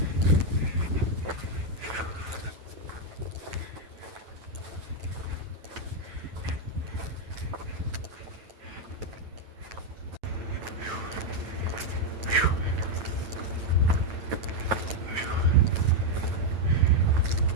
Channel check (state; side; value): late; left; 8.9 ms